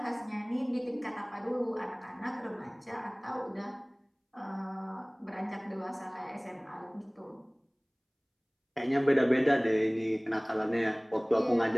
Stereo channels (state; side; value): identical; both; correlation 1.00